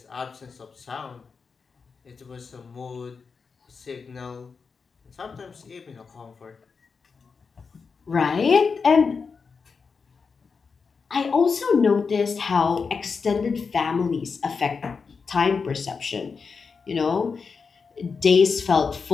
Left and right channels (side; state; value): right; quieter; 5.2 dB